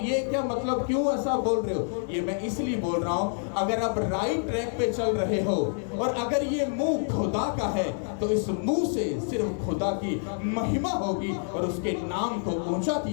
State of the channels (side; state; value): right; silent; 60 dB below the other